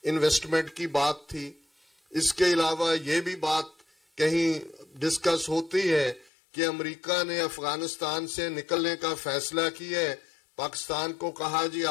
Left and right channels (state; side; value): drops out; right; at 6.3 s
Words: انویسٹمنٹ کی بات تھی، اس کے علاوہ یہ بھی بات کہیں ڈسکس ہوتی ہے کہ امریکہ نے افغانستان سے نکلنے کا فیصلہ کیا ہے، پاکستان کو کہا جی